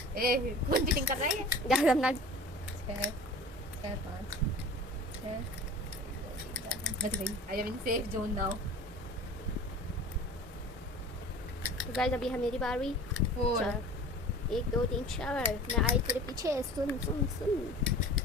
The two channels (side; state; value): both; normal; correlation 0.40